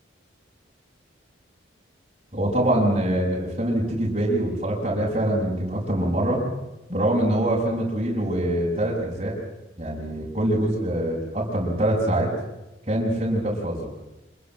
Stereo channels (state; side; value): normal; both; correlation 0.58